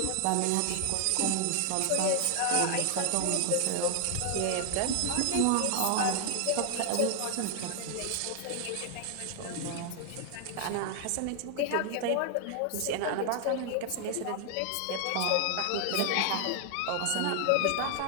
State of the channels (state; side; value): different; both; correlation 0.00